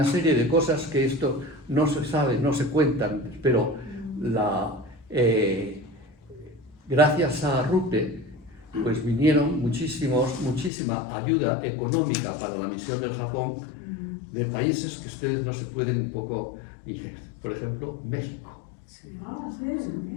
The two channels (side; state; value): right; drops out; at 10.7 s